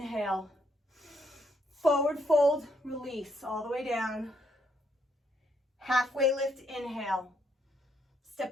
Forward fold, release, all the way down. Halfway lift, inhale. Step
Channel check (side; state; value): both; normal; correlation 0.74